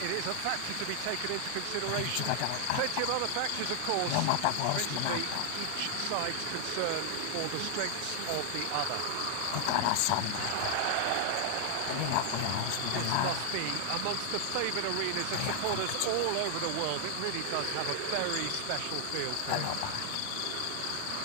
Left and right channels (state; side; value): different; both; correlation 0.00